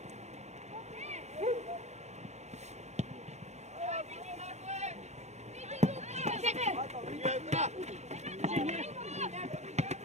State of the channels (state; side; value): late; left; 0.33 ms